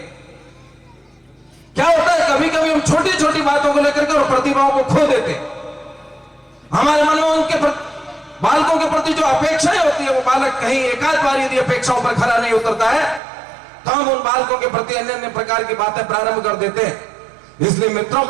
क्या होता है, कभी कभी हम छोटी छोटी बातों को लेकर के और प्रतिभाओं को खो देते। हमारे मन में उनके बालकों के प्रति जो अपेक्षाएं होती है, वो बालक कहीं एकाध बार यदि अपेक्षाओं पर खरा नहीं उतरता है तो हम उन बालकों के प्रति अन्य अन्य प्रकार की बातें प्रारंभ कर देते हैं। इसलिए मित्रों,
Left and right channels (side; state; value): left; drops out; at 13.2 s